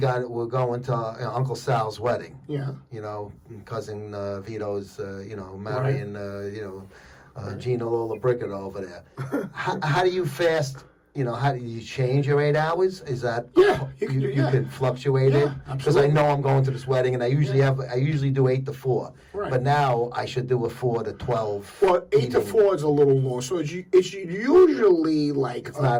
to Uncle Sal's wedding. Yeah. Cousin Vito's, marrying, Gina Lollobrigida over there. How do you fast? How do you change your 8 hours? Is that you can fluctuate it? Because I know I'm going to this wedding, and I usually do 8 to 4. Right. But now I should do a 4 to 12. Well, 8 to 4 is a little long, so it's usually like it's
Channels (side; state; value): both; identical; correlation 1.00